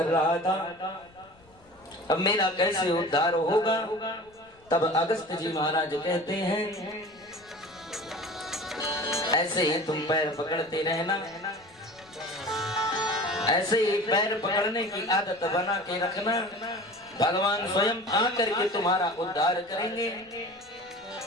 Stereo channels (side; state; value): left; noise; rumble, 29 dB below the sound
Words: रहा था अब मेरा कैसे उद्धार होगा। तब अगस्त जी महाराज कहते हैं ऐसे ही तुम पैर पकड़ते रहना, ऐसे ही पैर पकड़ने की आदत बना के रखना, भगवान स्वयं आकर के तुम्हारा उद्धार करेंगे।